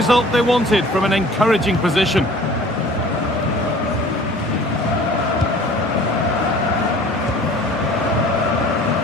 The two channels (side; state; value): both; normal; correlation 0.48